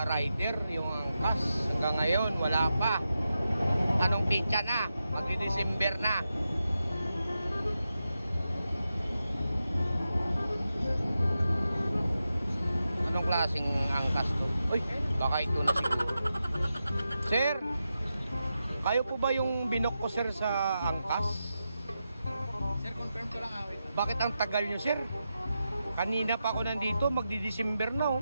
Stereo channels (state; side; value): inverted; both; correlation -0.89